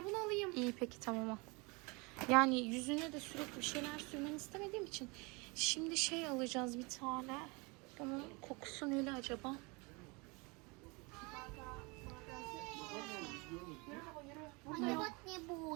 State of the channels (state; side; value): quieter; left; 28.2 dB